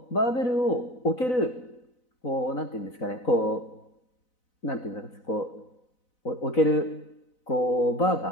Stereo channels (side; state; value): right; late; 4.0 ms